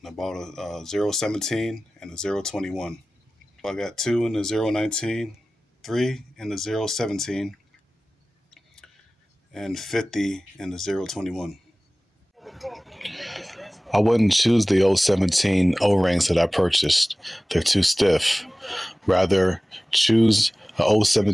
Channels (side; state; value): both; normal; correlation 0.97